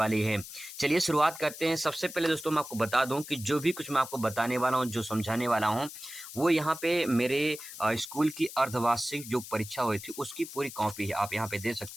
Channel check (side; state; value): left; noise; hiss, 12 dB below the sound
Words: है। चलिए शुरुआत करते हैं। सबसे पहले दोस्तों मैं आपको बता दूं कि जो भी कुछ मैं आपको बताने वाला हूं, जो समझाने वाला हूं, वो यहाँ पे मेरे स्कूल की अर्धवार्षिक जो परीक्षा हुई थी उसकी पूरी कॉपी है। आप यहाँ पे दे